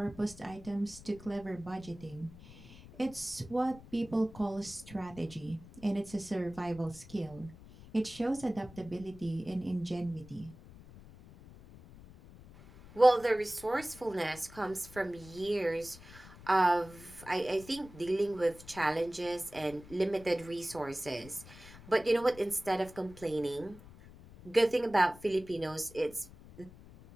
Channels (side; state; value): left; noise; rumble, 19 dB below the sound